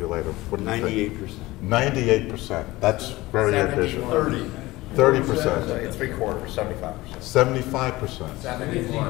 later. What do you think? 98%. That's very ambitious. 30%. 3/4, 75%. 75%.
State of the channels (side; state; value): right; quieter; 19.2 dB